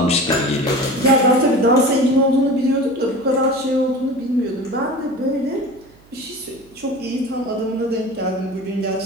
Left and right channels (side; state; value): right; noise; hum, 28 dB below the sound